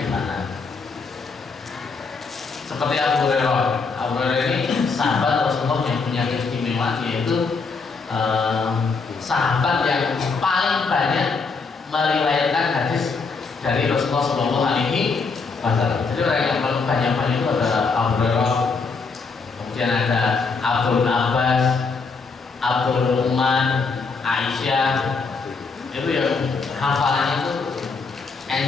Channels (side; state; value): right; quieter; 4.6 dB